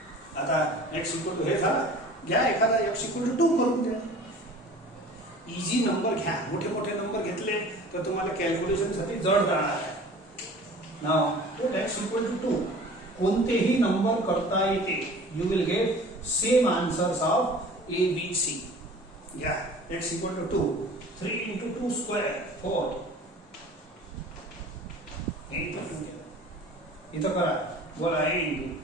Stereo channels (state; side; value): normal; both; correlation 0.44